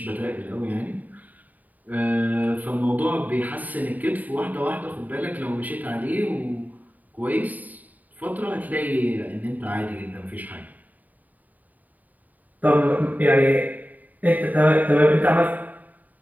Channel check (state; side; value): late; left; 0.079 ms